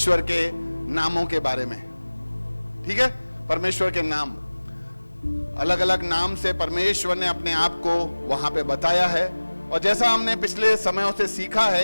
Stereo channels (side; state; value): both; inverted; correlation -1.00